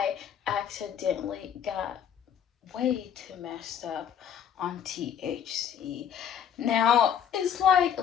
accidentally got way too messed up on THC. Now, it's like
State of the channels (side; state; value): right; quieter; 8.6 dB